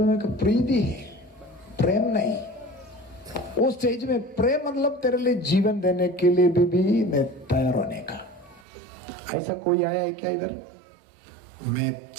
में प्रीति है, प्रेम नहीं। उस स्टेज में प्रेम मतलब तेरे लिए जीवन देने के लिए भी मैं तैयार होने का। ऐसा कोई आया है क्या इधर? मैं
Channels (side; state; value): left; drops out; at 8.6 s